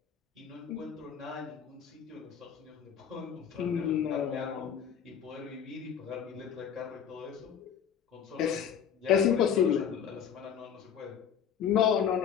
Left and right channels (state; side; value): quieter; right; 8.1 dB